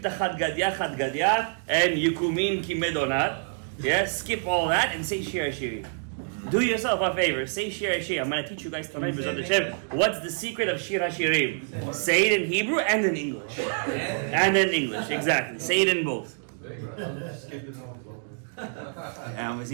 the Chad Gadya, and Yukumin Kimedonat. Yeah, skip all that and say Shir Hashirim. Do yourself a favor. Say Shir Hashirim. I'm going to teach you guys tonight what's the secret of Shir Hashirim. Say it in Hebrew and in English. And in English, exactly. Say it in both. He's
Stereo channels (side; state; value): left; silent; digital silence